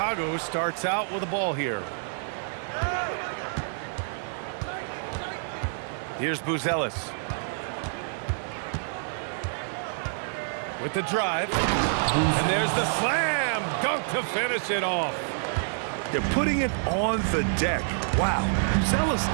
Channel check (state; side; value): silent; left; digital silence